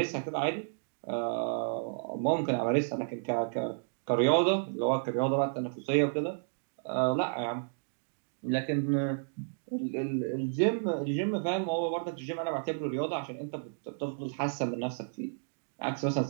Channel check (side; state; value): left; silent; digital silence